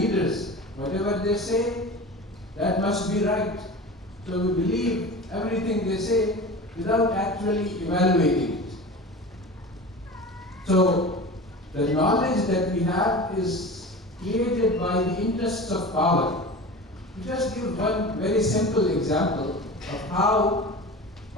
Whatever they say, that must be right. So we believe everything they say without actually evaluating it. So the knowledge that we have is created by the interests of power. To just give one very simple example of how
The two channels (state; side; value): normal; both; correlation 0.33